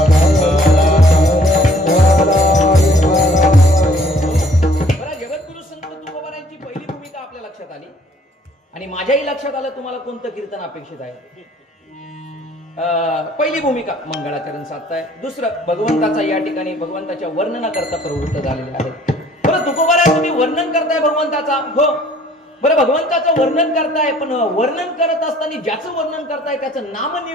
जगद्गुरु संत तुकोबारायांची पहिली भूमिका आपल्या लक्षात आली. आणि माझ्याही लक्षात आलं तुम्हाला कोणतं कीर्तन अपेक्षित आहे. पहिली भूमिका मंगळाचरण साधताय. दुसरं, भगवंताचा या ठिकाणी भगवंताच्या वर्णनाकरता प्रवृत्त झालेले आहेत. बरं तुकोबाराय, तुम्ही वर्णन करताय भगवंताचा, हो बरं भगवंताचं वर्णन करताय, पण वर्णन करत असताना ज्याचं वर्णन करताय त्याचं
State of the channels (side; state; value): both; normal; correlation 0.58